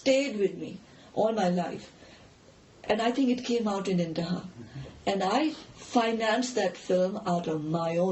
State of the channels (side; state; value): both; identical; correlation 1.00